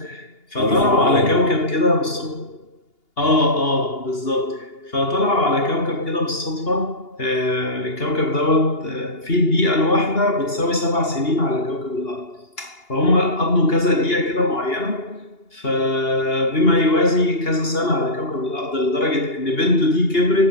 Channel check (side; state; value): right; late; 2.8 ms